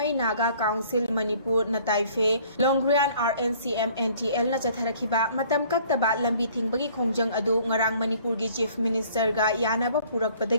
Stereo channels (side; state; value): both; inverted; correlation -0.56